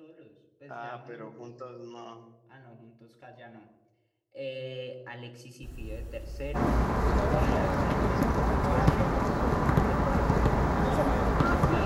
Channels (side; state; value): both; identical; correlation 1.00